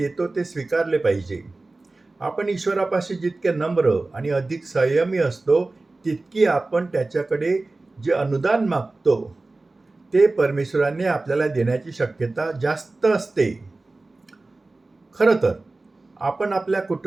ते स्वीकारले पाहिजे. आपण ईश्वरापाशी जितके नम्र आणि अधिक संयमी असतो तितकी आपण त्याच्याकडे जे अनुदान मागतो ते परमेश्वराने आपल्याला देण्याची शक्यता जास्त असते. खरं तर आपण आपल्या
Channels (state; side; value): quieter; left; 3.2 dB